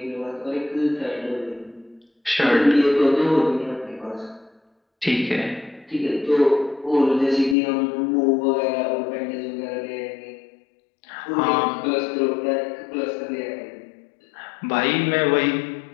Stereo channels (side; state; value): right; drops out; at 7.6 s